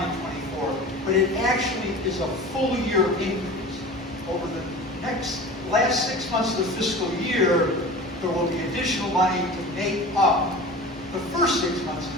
but it actually is a full year increase. Over the next last 6 months of the fiscal year, there will be additional money to make up the first 6 months of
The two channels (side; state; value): both; normal; correlation 0.36